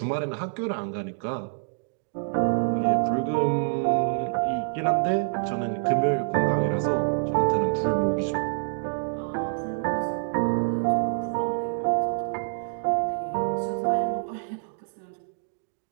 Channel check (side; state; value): left; silent; digital silence